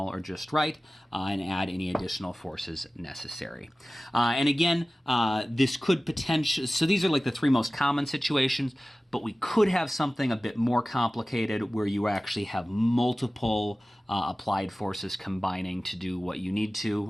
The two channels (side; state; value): both; normal; correlation 0.97